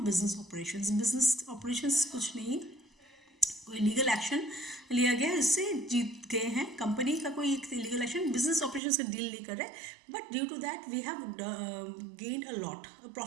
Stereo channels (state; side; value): drops out; left; at 8.8 s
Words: business operations. Business operations कुछ नहीं, कोई लीगल एक्शन लिया गया है, इससे जीत गए हैं. कंपनी का कोई एक लीगल एक्शन बिजनेस ऑपरेशन से डील नहीं कर रहे, but due to that we have gained a lot,